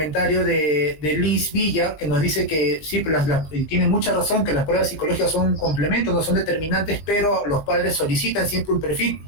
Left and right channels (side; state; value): right; late; 20 ms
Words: de Liz Villa, que nos dice que sí, y tiene mucha razón, que las pruebas psicológicas son un complemento, no son determinantes, pero los padres solicitan siempre un perfil,